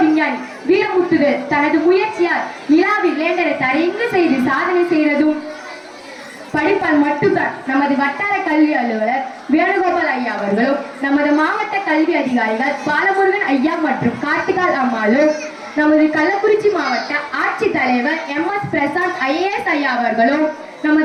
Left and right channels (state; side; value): identical; both; correlation 1.00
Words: விஞ்ஞானி வீரமுத்துவேல் தனது முயற்சியால் நிலாவில் லேண்டரை தரையங்கு செய்து சாதனை செய்ததும் படிப்பால் மட்டும்தான். நமது வட்டார கல்வி அலுவலர் வேணுகோபால் ஐயா அவர்களும், நமது மாவட்ட கல்வி அதிகாரிகள் பாலமுருகன் ஐயா மற்றும் கார்த்திகால் அம்மாளும், நமது கள்ளக்குறிச்சி மாவட்ட ஆட்சித்தலைவர் MS பிரசாந்த் IAS ஐயா அவர்களும்,